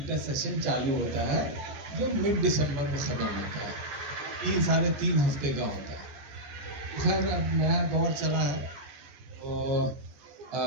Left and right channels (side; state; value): left; late; 14 ms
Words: सेशन चालू होता है जो मिड दिसंबर में ख़त्म होता है, 3 साढ़े 3 हफ्ते का होता है। खैर अब नया दौर चला है तो